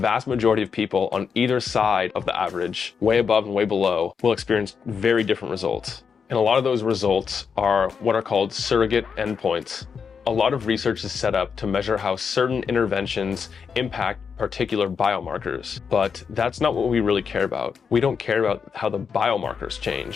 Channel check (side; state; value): right; quieter; 6.2 dB